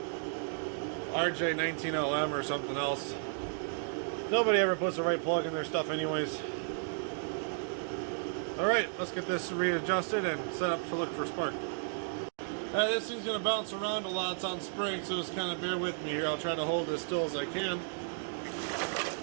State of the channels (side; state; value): left; silent; digital silence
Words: RJ19LM or something else. Nobody ever puts the right plug in their stuff anyways. Alright, let's get this readjusted and set up to look for spark. Alright, this thing's going to bounce around a lot. It's on spring, so just kind of bear with me here. I'll try to hold it as still as I can.